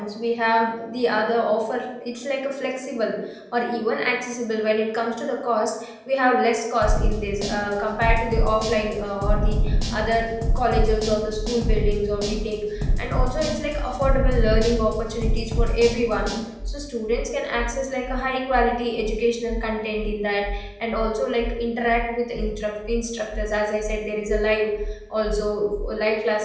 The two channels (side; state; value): both; identical; correlation 1.00